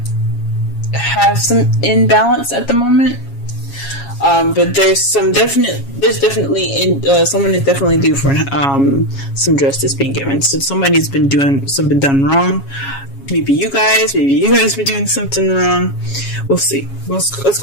have some imbalance at the moment, but there's definitely someone is definitely due for some justice being given. So somebody's been doing something done wrong. Maybe you guys been doing something wrong. We'll see. Let's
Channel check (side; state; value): right; late; 7.3 ms